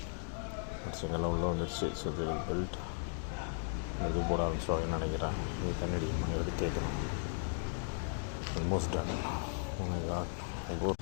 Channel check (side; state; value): right; silent; 53 dB below the other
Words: செங்கல்லாம் உள்ளே வந்துடுச்சு. So they will build. இது போட ஆரம்பிச்சிடுவாங்கன்னு நினைக்கிறேன். இது தண்ணி அடிக்கணும், எடுத்து கேட்கணும். Almost done.